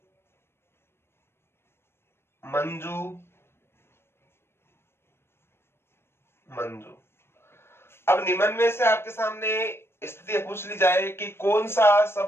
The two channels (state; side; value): late; right; 0.12 ms